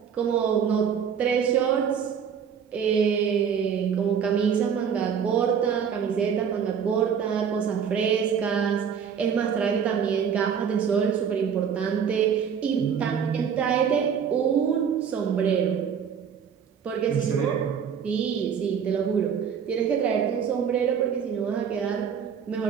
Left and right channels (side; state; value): left; quieter; 7.5 dB